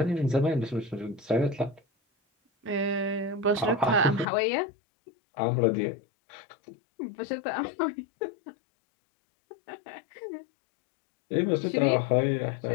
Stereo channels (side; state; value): right; drops out; at 4.2 s